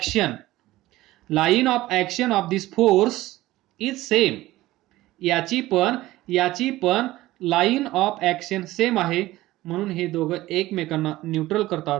Line of action of this force is same. याची पण लाईन ऑफ ऍक्शन सेम आहे, म्हणून हे दोघं एकमेकांना न्यूट्रल करतात.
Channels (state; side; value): quieter; left; 17.0 dB